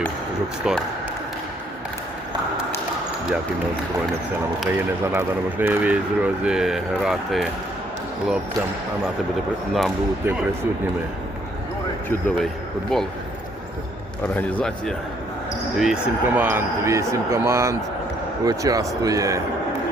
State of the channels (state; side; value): normal; both; correlation 0.67